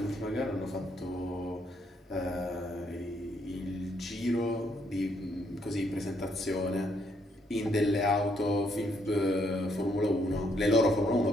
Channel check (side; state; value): both; normal; correlation 0.72